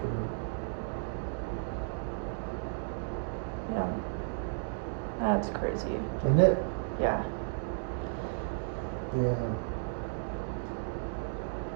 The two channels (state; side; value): silent; left; digital silence